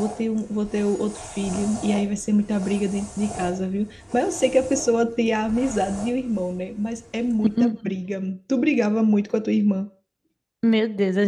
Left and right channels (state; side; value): identical; both; correlation 1.00